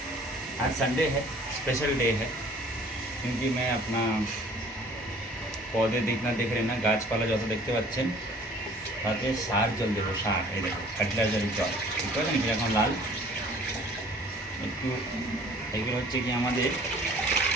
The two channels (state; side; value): normal; both; correlation 0.52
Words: आज Sunday है, special day है क्योंकि मैं अपना पौधे देखना देख रहे ना গাছপালা যত দেখতে পাচ্ছেন তাতে সার জল দেবো। সার এই দেখো ফার্টিলাইজারের জল বুঝতে পারলেন কি এখন লাল একটু এগুলো হচ্ছে কি আমাদের